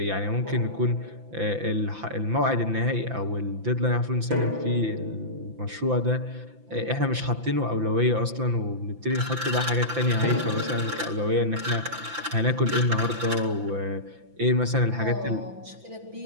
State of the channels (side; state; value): left; late; 5.9 ms